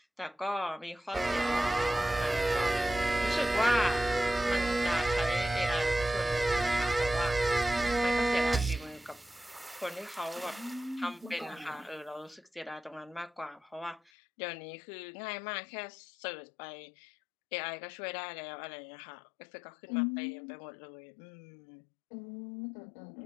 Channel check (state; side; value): drops out; right; at 14.1 s